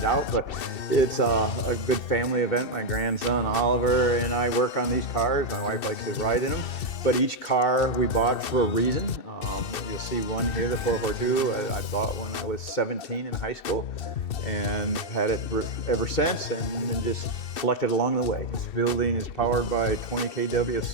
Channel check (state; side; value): late; right; 2.7 ms